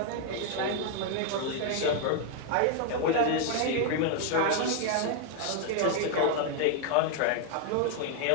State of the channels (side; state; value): both; different; correlation 0.00